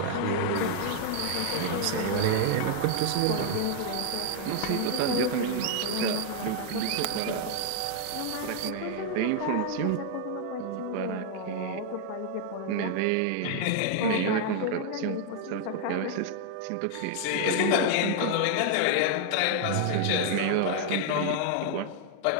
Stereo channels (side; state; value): both; different; correlation 0.00